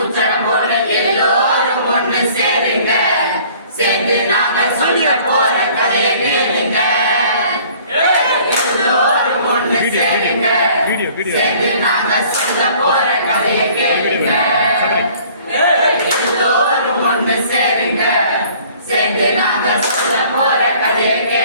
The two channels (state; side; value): inverted; both; correlation -0.53